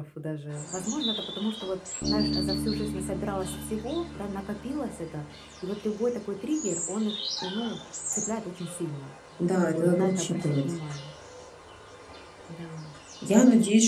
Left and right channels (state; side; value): identical; both; correlation 1.00